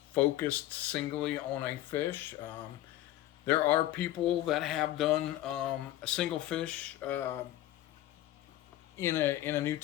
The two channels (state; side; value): quieter; right; 14.4 dB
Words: focused singly on a fish. There are people that have done a single fish in a new